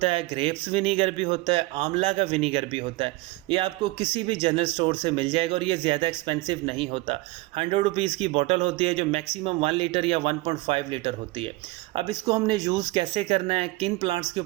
है, ग्रेप्स विनीगर भी होता है, आंवला का विनीगर भी होता है। ये आपको किसी भी जनरल स्टोर से मिल जाएगा और ये ज़्यादा एक्सपेंसिव नहीं होता। 100 रुपीज़ की बॉटल होती है जो मैक्सिमम 1 लीटर या 1.5 लीटर होती है। अब इसको हमने यूज़ कैसे करना है, किन प्लांट्स के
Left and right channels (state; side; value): quieter; left; 21.6 dB